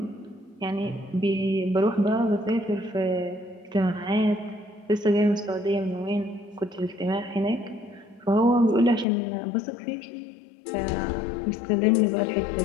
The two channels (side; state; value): right; drops out; at 9.1 s